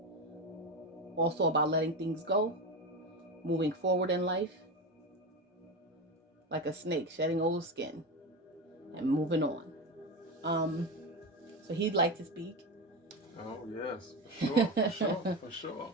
also about letting things go, moving forward in life, like a snake shedding old skin and moving on. So he'd like to speak. Oh yes, for sure.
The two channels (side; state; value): both; normal; correlation 0.19